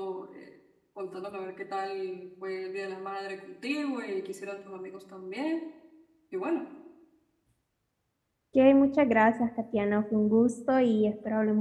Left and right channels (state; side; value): identical; both; correlation 1.00